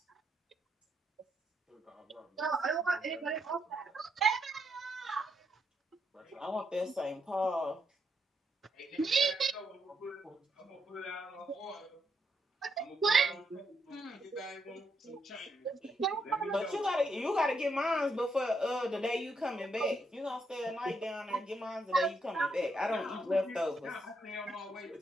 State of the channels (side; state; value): both; normal; correlation 0.78